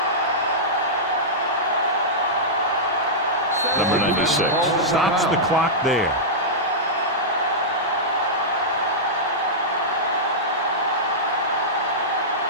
Number 96. Stops the clock there.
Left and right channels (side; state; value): both; normal; correlation -0.12